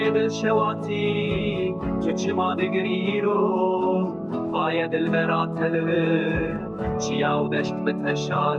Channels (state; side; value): identical; both; correlation 1.00